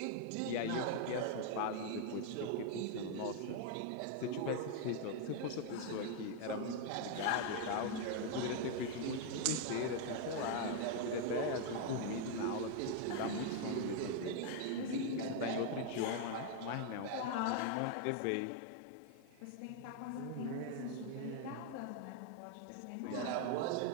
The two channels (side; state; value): both; different; correlation 0.00